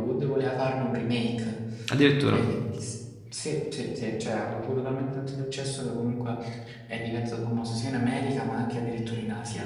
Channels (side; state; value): both; identical; correlation 1.00